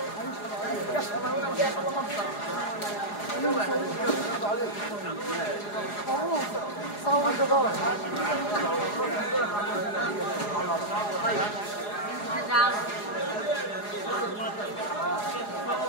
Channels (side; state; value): right; late; 4.8 ms